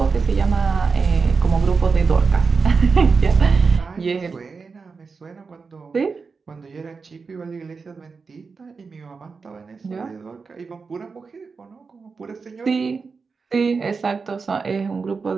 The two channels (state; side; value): quieter; left; 4.8 dB